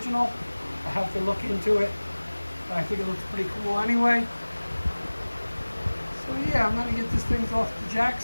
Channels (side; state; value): both; inverted; correlation -1.00